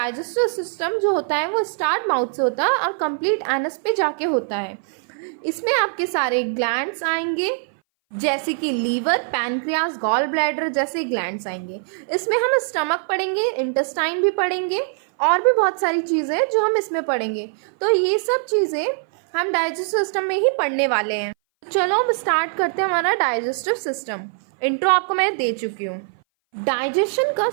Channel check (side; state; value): left; silent; 60 dB below the other